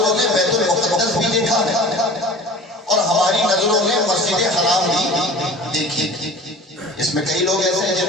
نے بیت المقدس بھی دیکھا ہے اور ہماری نظروں نے مسجد حرام بھی دیکھی۔ اس میں کئی لوگ ایسے ہیں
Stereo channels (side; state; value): both; normal; correlation 0.41